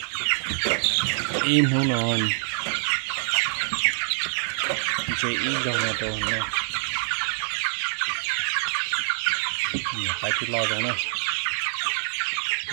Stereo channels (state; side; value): silent; left; digital silence